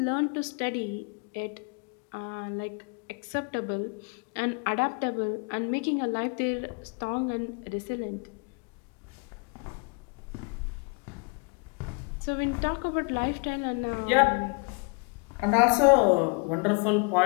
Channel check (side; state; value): right; quieter; 34.9 dB